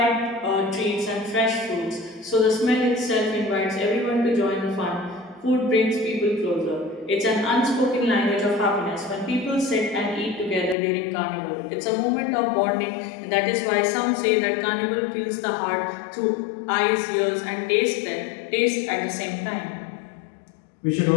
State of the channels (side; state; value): right; drops out; at 10.8 s